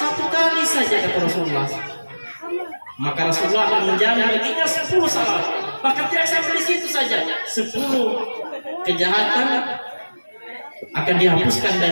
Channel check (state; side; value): inverted; both; correlation -1.00